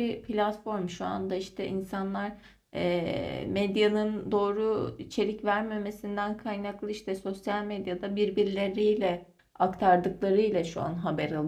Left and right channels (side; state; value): both; identical; correlation 1.00